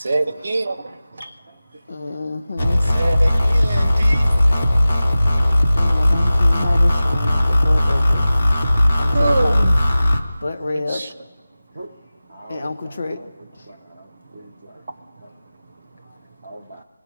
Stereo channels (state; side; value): inverted; both; correlation -0.96